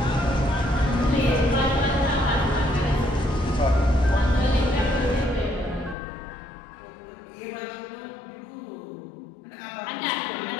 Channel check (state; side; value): drops out; right; at 6.0 s